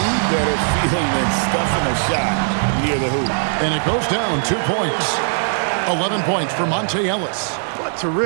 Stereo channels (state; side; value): silent; left; 66 dB below the other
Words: better feeling than stuffing a shot near the hoop? And it goes down 2 points. 11 points for Monte Ellis. What